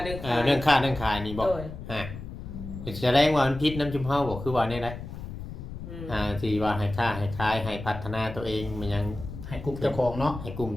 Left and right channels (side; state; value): left; noise; rumble, 10 dB below the sound